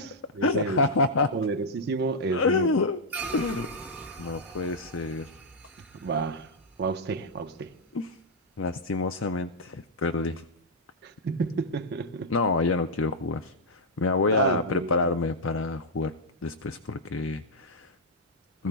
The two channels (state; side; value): normal; both; correlation -0.05